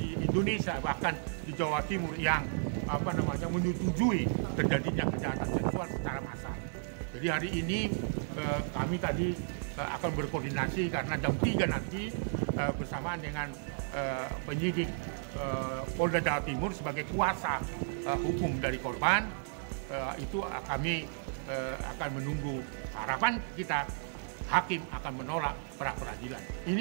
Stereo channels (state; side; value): silent; left; 55 dB below the other